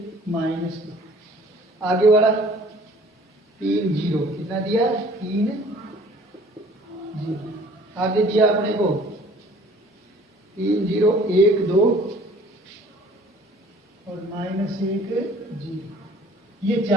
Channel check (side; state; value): both; normal; correlation 0.52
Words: - 2, आगे वाला 3 0, कितना दिया, 3 0, आगे दिया अपने को 3 0 1 2 और -1 0, ये